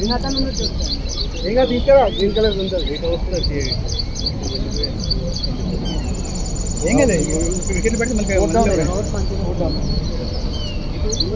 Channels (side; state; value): both; identical; correlation 1.00